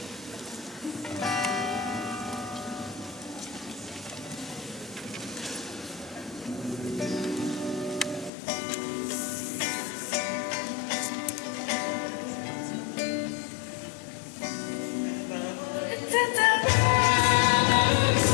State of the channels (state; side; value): drops out; right; at 8.3 s